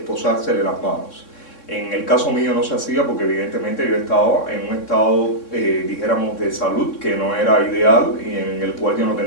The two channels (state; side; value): late; right; 3.6 ms